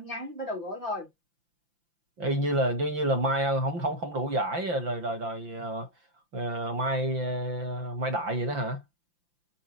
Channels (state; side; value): late; left; 5.8 ms